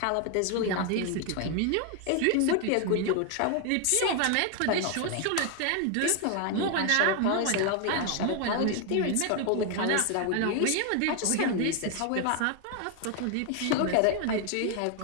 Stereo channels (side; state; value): both; different; correlation 0.01